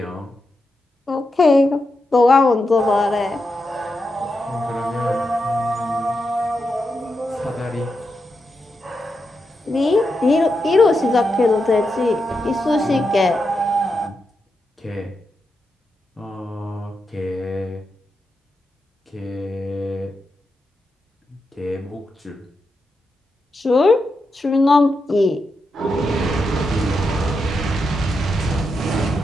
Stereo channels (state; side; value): normal; both; correlation 0.86